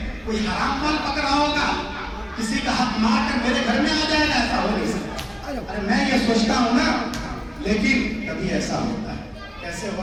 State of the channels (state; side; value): identical; both; correlation 1.00